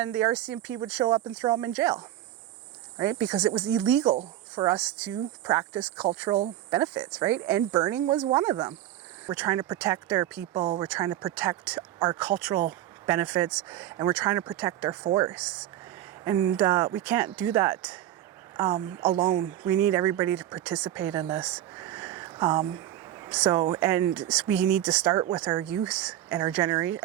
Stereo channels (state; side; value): quieter; left; 12.9 dB